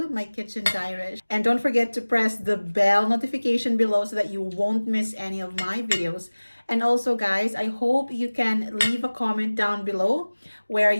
my kitchen diary. And don't forget to press the bell notification below so that you won't miss any of my videos. And also guys, I hope you can leave a comment down below where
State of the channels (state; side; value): inverted; both; correlation -1.00